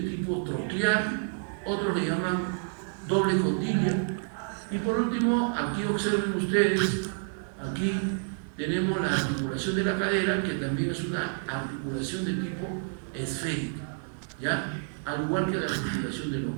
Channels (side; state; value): left; silent; digital silence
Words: troclear, otros le llaman doble condilia. Y por último, aquí observen ustedes, aquí tenemos la articulación de la cadera, que también es una articulación de tipo esférica, ¿ya? Al igual que la articulación del